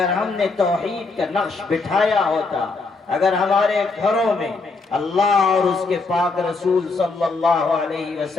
ہم نے توحید کا نقش بٹھایا ہوتا، اگر ہمارے گھروں میں اللہ اور اس کے پاک رسول صلی اللہ علیہ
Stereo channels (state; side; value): quieter; right; 3.9 dB